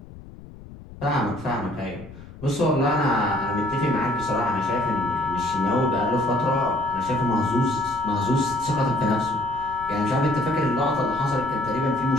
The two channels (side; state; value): left; noise; rumble, 17 dB below the sound